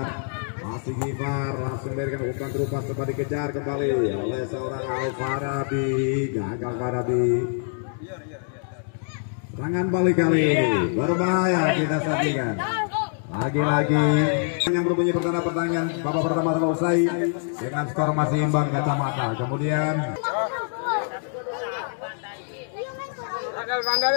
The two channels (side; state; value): right; silent; digital silence